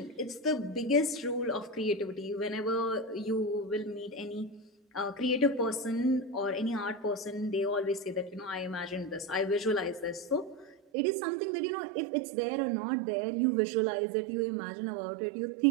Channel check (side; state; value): left; drops out; at 10.8 s